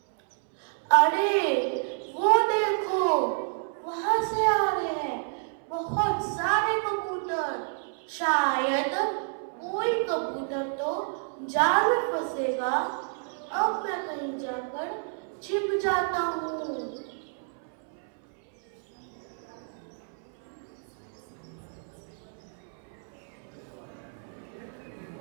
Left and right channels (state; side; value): silent; left; 58 dB below the other